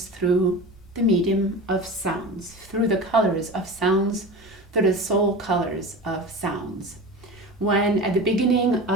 through the medium of sounds, through the colors of sounds, through the soul colors of sounds. When at the beginning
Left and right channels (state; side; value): normal; both; correlation 0.31